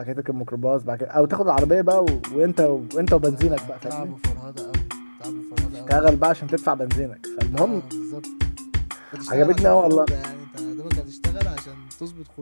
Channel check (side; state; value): both; inverted; correlation -1.00